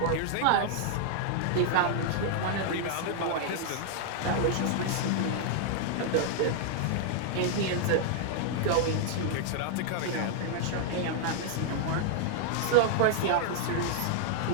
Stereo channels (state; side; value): different; both; correlation -0.01